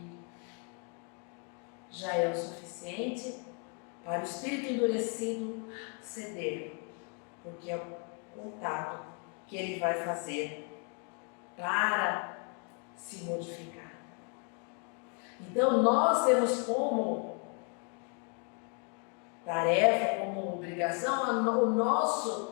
já é o suficiente para o espírito endurecido ceder, porque é o contato que ele vai fazer para se modificar. Então nós temos como tarefa, como obrigação, o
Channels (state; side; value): quieter; right; 38.2 dB